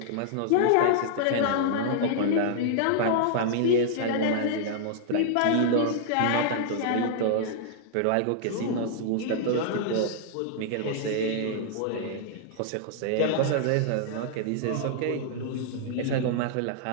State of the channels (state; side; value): different; both; correlation -0.01